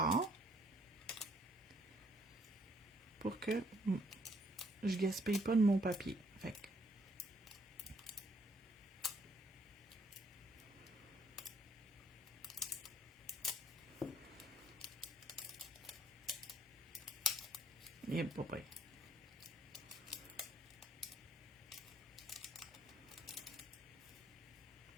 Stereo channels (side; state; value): both; normal; correlation 0.65